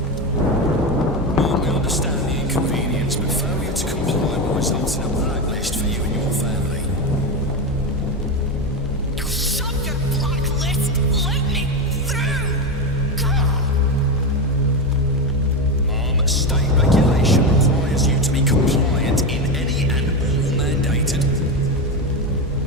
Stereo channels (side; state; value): both; normal; correlation 0.15